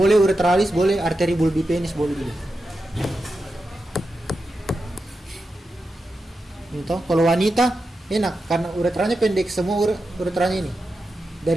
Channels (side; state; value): both; normal; correlation 0.89